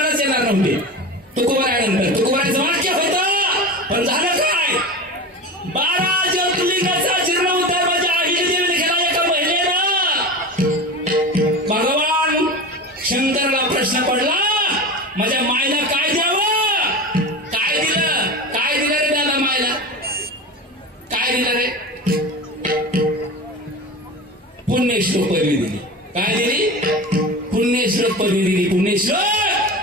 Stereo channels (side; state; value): both; normal; correlation 0.29